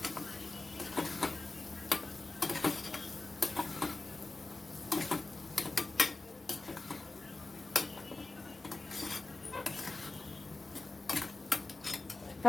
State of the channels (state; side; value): quieter; right; 3.3 dB